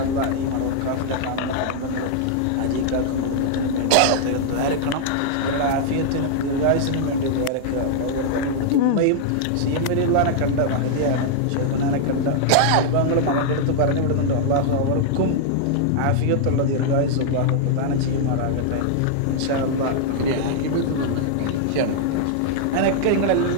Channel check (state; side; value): different; both; correlation -0.01